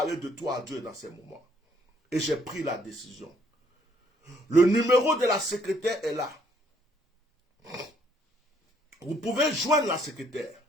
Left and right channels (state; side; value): normal; both; correlation 0.66